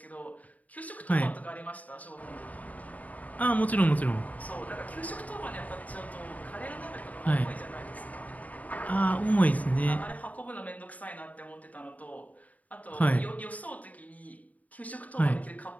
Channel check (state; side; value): late; right; 0.073 ms